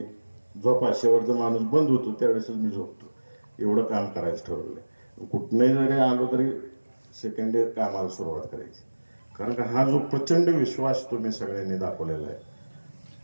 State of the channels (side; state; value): both; inverted; correlation -1.00